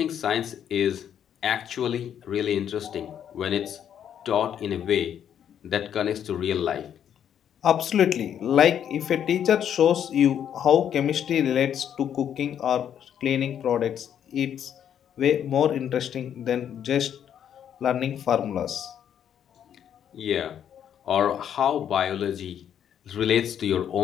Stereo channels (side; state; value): right; quieter; 9.3 dB